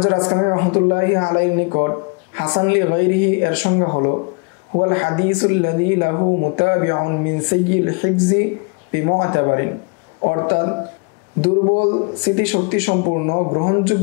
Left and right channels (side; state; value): right; quieter; 32.6 dB